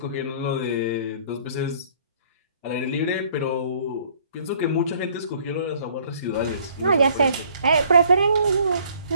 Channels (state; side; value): inverted; both; correlation -0.58